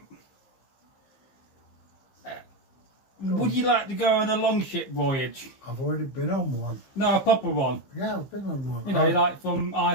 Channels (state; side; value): late; right; 15 ms